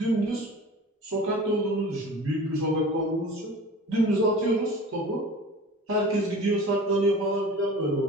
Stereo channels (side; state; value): both; normal; correlation 0.40